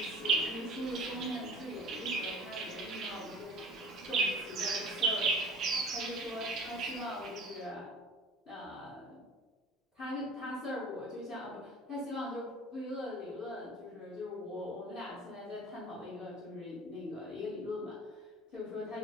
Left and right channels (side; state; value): both; normal; correlation 0.43